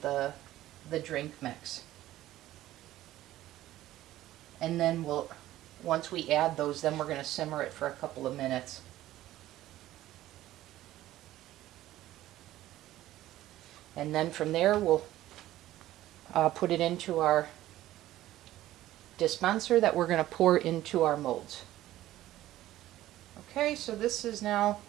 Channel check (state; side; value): quieter; left; 14.7 dB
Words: the drink mix. And then once we add those, then we're going to simmer it for a couple of minutes. And then from there, we'll put it into our dispenser that we're going to pour into our molds. Okay, so this is now